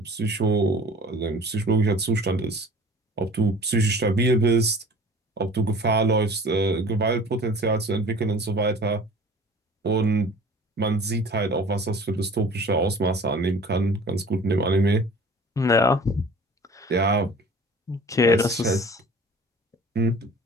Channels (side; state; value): both; normal; correlation 0.45